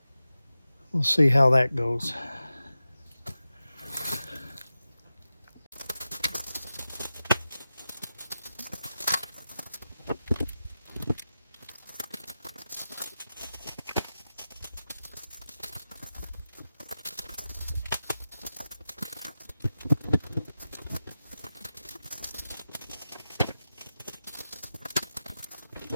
We'll see how that goes.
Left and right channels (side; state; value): both; inverted; correlation -0.92